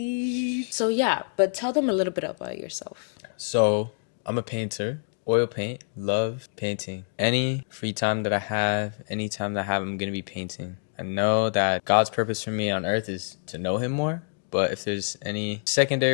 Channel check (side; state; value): right; silent; digital silence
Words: So yeah, but tell them a little bit about yourself. So, I'm a painter. Oil paint. Love painting. Any free time that I have, any time that I have, I'm going to be painting. I know that God's purpose for me on earth is to know him more. But if there's any